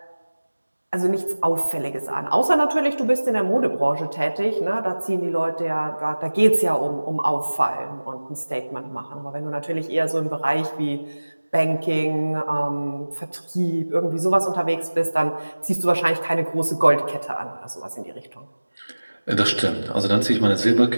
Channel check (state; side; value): inverted; both; correlation -1.00